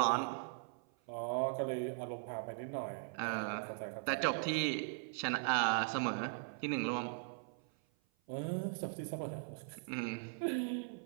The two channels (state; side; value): silent; left; 51 dB below the other